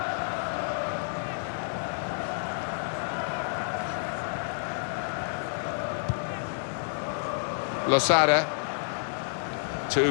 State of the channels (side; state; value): right; silent; digital silence